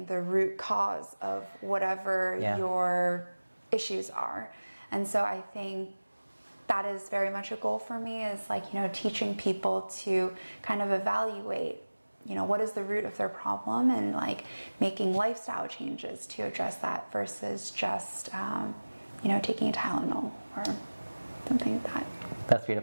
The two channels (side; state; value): both; inverted; correlation -1.00